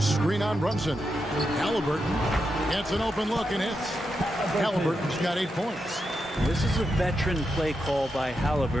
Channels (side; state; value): both; normal; correlation 0.86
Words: on Brunson. Halliburton gets an open look and hits. Halliburton's got 8 points. This is a veteran play call by